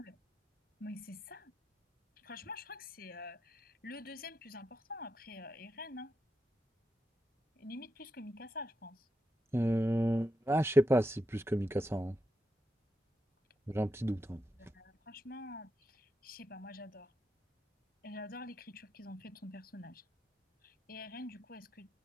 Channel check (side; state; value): both; normal; correlation 0.85